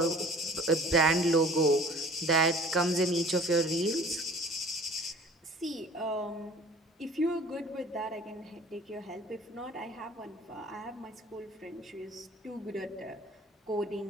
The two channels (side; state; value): both; normal; correlation 0.47